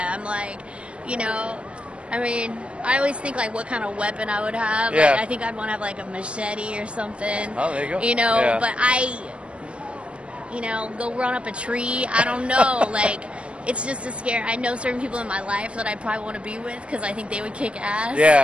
like, I always think what kind of weapon I would have. Yeah. I think I'd want to have a machete or something. Oh, there you go. But go run up a tree. I don't know. Like, it's just a scare. I know certain people in my life that I probably want to be with because I think they would kick ass.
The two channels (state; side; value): late; left; 0.059 ms